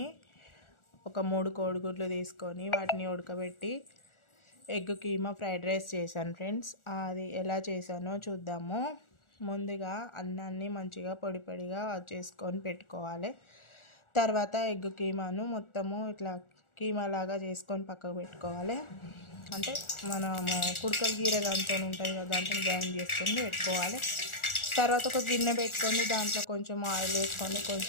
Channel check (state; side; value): late; right; 1.4 ms